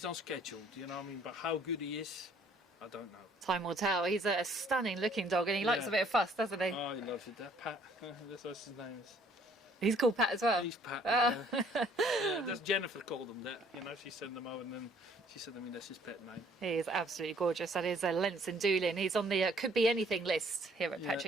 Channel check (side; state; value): both; normal; correlation 0.60